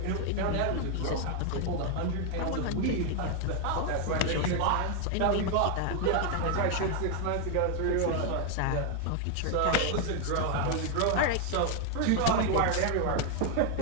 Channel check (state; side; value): different; both; correlation 0.01